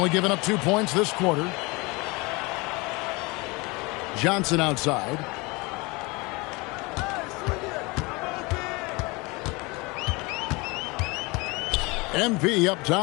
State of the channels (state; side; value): quieter; right; 25.8 dB